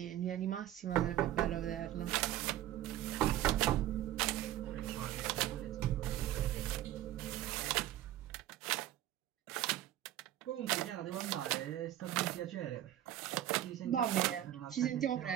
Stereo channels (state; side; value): quieter; left; 13.1 dB